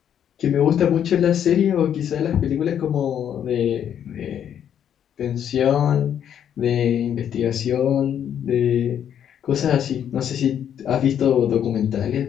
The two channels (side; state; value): right; quieter; 9.4 dB